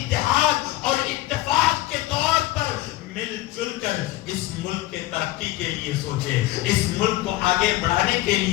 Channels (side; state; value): right; quieter; 17.1 dB